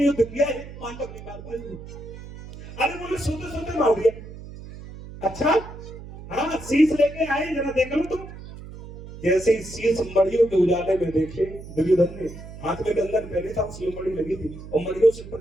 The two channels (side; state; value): right; noise; hum, 14 dB below the sound